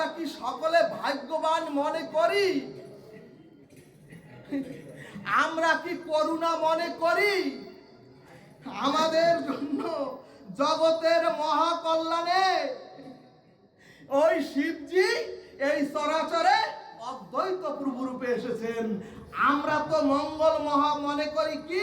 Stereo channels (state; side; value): identical; both; correlation 1.00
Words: কি সকলে ভাগ্যবান মনে করি? আমরা কি করুণা মনে করি? আমাদের জন্য জগতের মহাকল্যাণে ওই শিবজি এই চরাচরে অদ্বৈত প্রভু রূপে এসেছেন। আমরা তো মঙ্গল মহা মনে করি